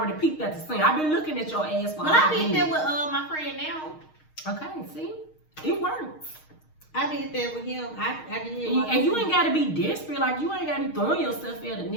peeked at the scene. I've been looking at your ass for I did that with my friend now. Okay, see? It works. I did that with him. I did. And you ain't gotta be desperate. Like, you ain't gotta be throwing yourself at a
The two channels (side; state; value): right; late; 6.4 ms